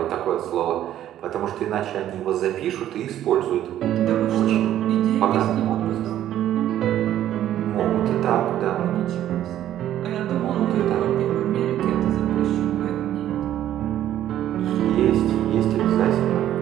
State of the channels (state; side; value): quieter; left; 11.9 dB